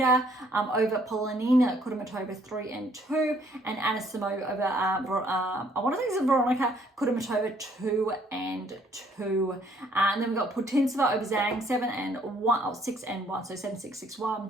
over Polonina Kudermetova, 3 and 2. And Anisimova over, I want to think it's Veronica Kudermetova, 2 and 2. And then we've got Putintseva over Zhang, 7 and 1, 6 and 1, so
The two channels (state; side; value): normal; both; correlation 0.64